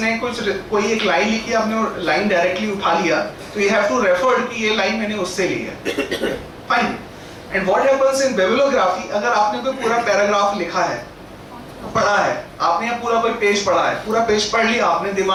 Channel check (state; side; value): identical; both; correlation 1.00